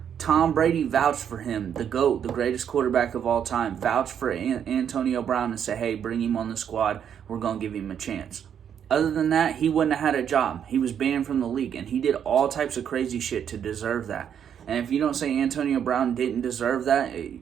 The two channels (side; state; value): left; quieter; 8.6 dB